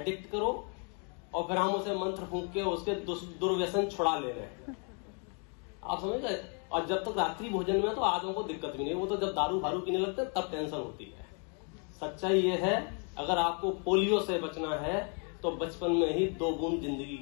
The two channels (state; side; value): quieter; right; 39.3 dB